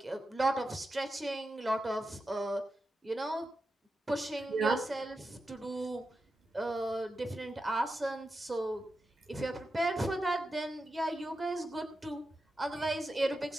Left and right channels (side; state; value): both; normal; correlation 0.89